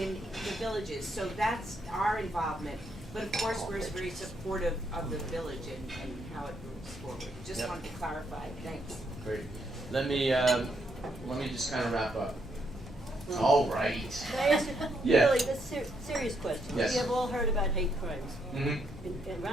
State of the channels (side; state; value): both; normal; correlation 0.76